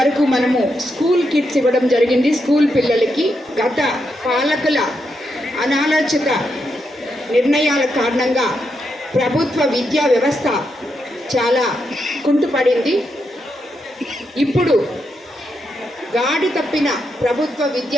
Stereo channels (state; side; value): normal; both; correlation 0.83